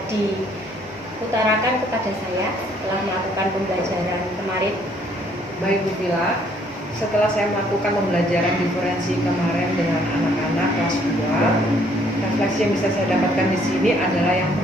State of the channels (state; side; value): normal; both; correlation 0.64